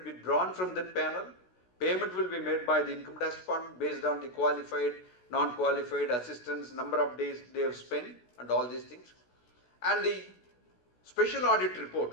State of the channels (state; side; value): late; right; 16 ms